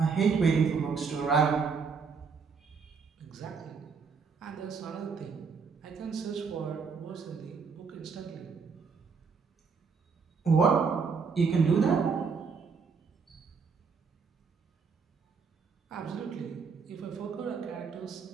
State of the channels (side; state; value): left; quieter; 5.5 dB